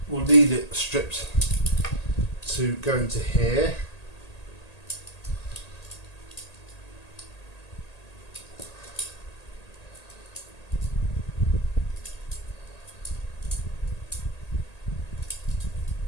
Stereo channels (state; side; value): late; right; 1.8 ms